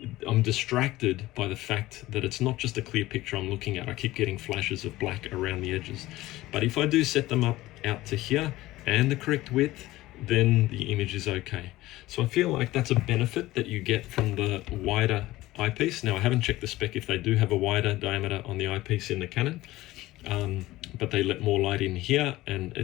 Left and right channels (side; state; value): right; quieter; 17.3 dB